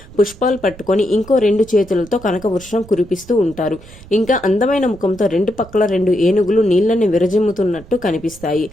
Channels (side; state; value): right; noise; rumble, 20 dB below the sound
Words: పుష్పాలు పట్టుకొని ఇంకో 2 చేతులతో కనక వర్షం కురిపిస్తూ ఉంటారు. ఇంకా అందమైన ముఖంతో 2 పక్కల 2 ఏనుగులు నీళ్లని విరజిమ్ముతున్నట్టు కనిపిస్తాయి.